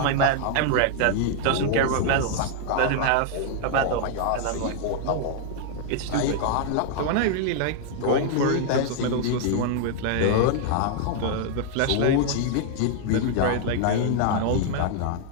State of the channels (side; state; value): both; different; correlation 0.00